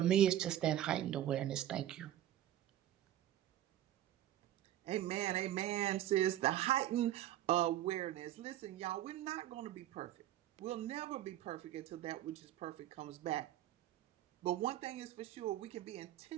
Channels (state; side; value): quieter; left; 12.6 dB